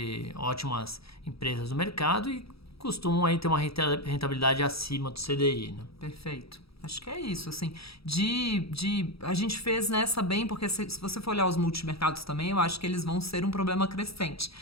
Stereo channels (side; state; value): right; late; 0.77 ms